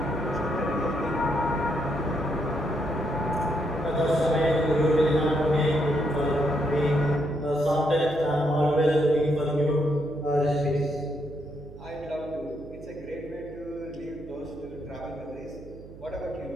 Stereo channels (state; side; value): noise; right; hum, 17 dB below the sound